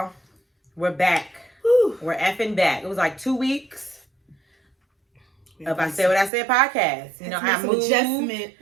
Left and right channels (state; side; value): drops out; left; at 6.3 s